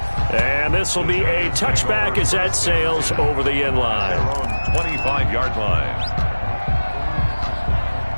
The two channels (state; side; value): inverted; both; correlation -1.00